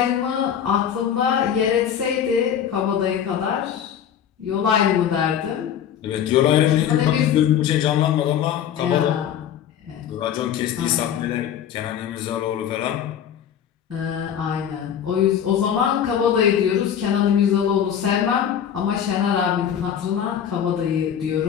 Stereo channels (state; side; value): quieter; right; 9.1 dB